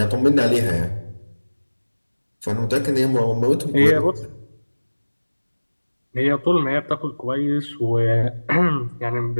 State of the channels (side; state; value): both; inverted; correlation -1.00